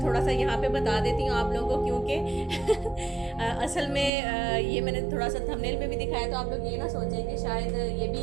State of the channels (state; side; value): drops out; left; at 4.1 s